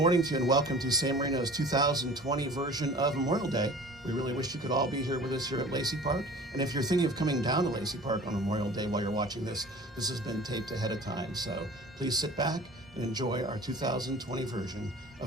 to you and welcome to San Marino's 2020 version of Memorial Day. We really wish you could all be here with us here at Lacey Park. And if you're thinking of coming down to Lacey Park on Memorial Day while you're watching this, this has been taped ahead of time. So please sit back and enjoy our 2020 version of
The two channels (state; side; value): normal; both; correlation 0.43